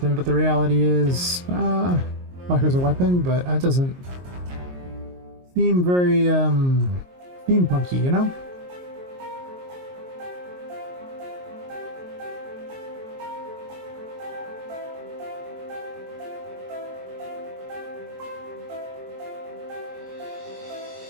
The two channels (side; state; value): left; late; 22 ms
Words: but the reality is, like as a weapon, but that doesn't seem very, steampunky, you know?